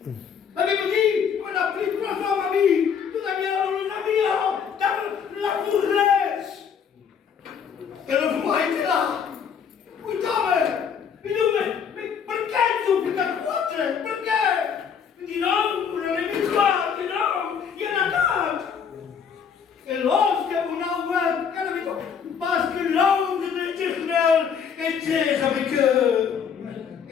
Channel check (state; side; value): quieter; right; 7.1 dB